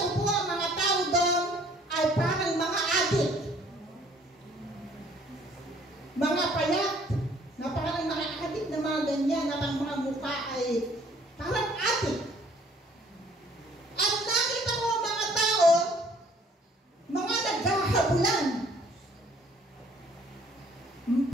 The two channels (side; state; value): both; normal; correlation 0.59